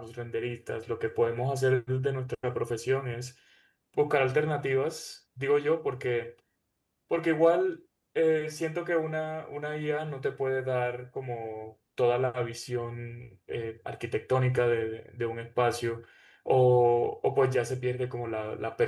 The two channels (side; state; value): both; identical; correlation 1.00